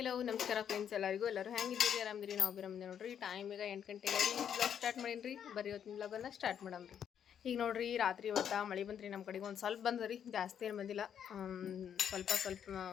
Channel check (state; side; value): quieter; right; 8.7 dB